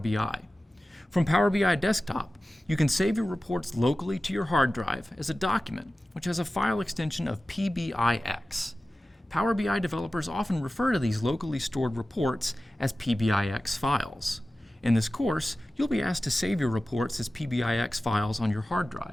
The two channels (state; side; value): normal; both; correlation 0.95